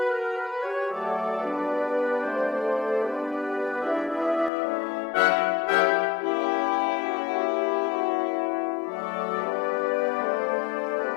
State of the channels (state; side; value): drops out; right; at 4.5 s